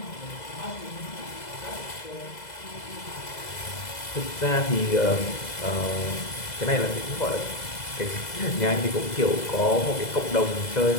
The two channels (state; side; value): late; right; 2.0 ms